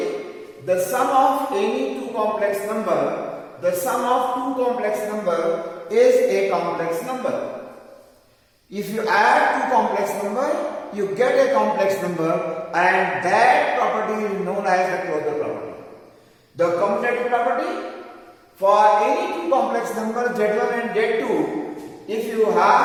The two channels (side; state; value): both; identical; correlation 1.00